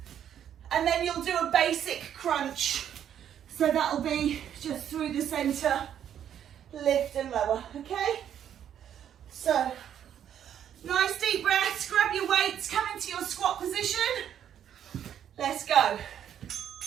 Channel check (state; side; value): quieter; left; 9.7 dB